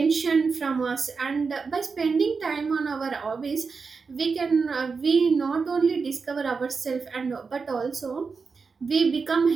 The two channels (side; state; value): left; quieter; 4.9 dB